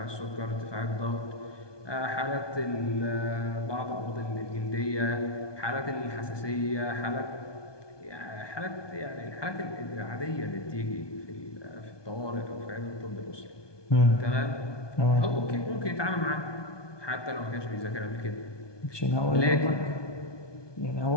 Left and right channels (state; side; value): late; right; 1.2 ms